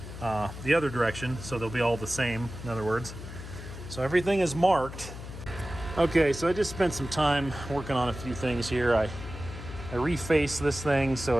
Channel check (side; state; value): left; noise; hum, 11 dB below the sound